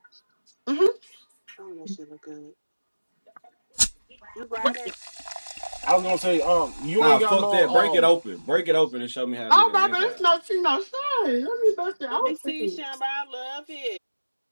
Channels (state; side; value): inverted; both; correlation -1.00